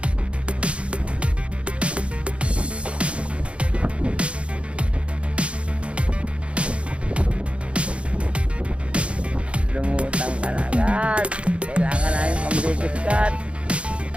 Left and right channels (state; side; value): late; left; 0.060 ms